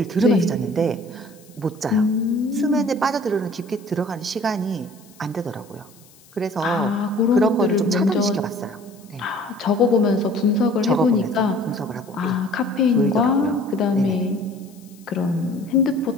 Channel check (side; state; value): left; noise; hiss, 27 dB below the sound